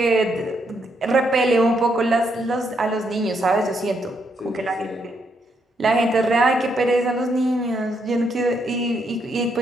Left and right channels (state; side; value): normal; both; correlation 0.76